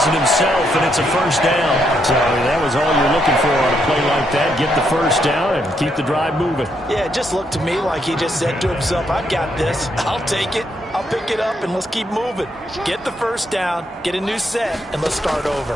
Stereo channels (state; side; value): normal; both; correlation 0.76